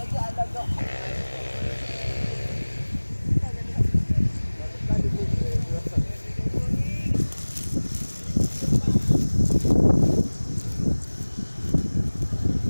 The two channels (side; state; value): both; inverted; correlation -1.00